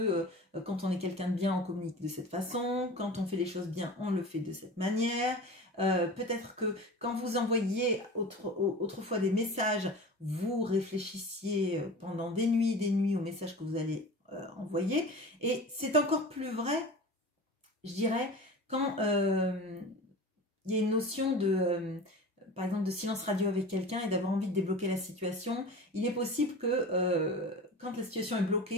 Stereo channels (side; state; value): both; normal; correlation 0.35